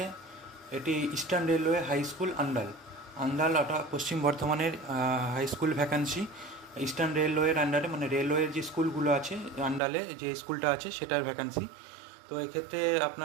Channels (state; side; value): drops out; left; at 9.8 s